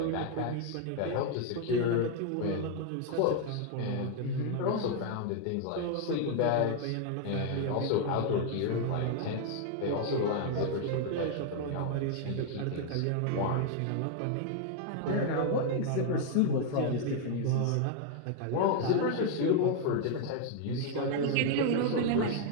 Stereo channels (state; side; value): different; both; correlation 0.00